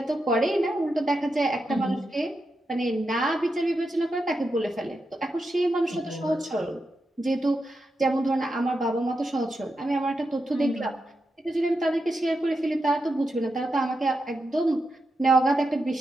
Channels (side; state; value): both; normal; correlation 0.87